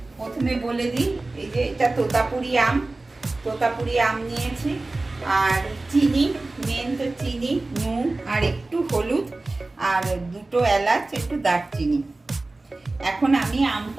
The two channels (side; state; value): left; quieter; 3.1 dB